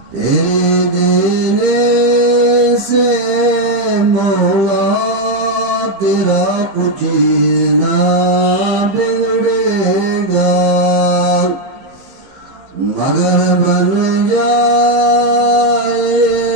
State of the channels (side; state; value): left; late; 15 ms